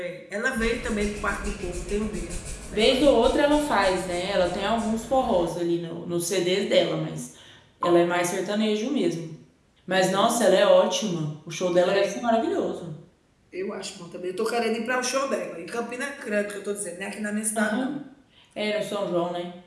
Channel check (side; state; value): both; identical; correlation 1.00